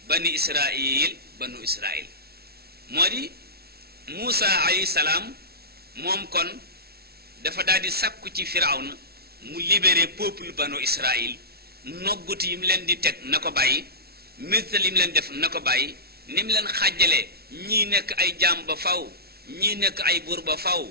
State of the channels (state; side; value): late; left; 0.45 ms